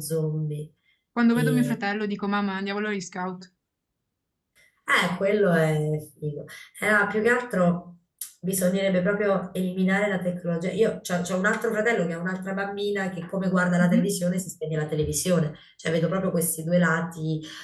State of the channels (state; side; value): identical; both; correlation 1.00